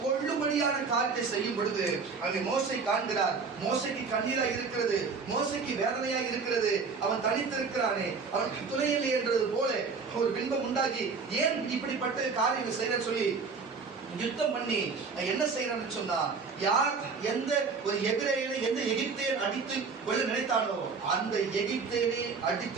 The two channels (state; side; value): quieter; left; 5.0 dB